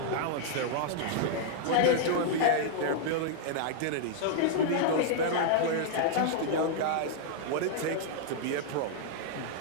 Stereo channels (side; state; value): both; different; correlation -0.01